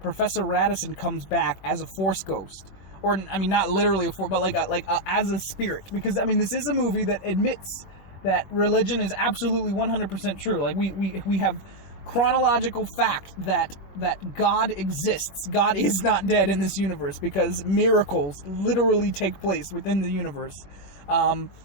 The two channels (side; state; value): right; late; 21 ms